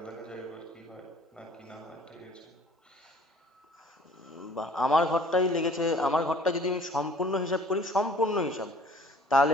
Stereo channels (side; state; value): both; normal; correlation 0.53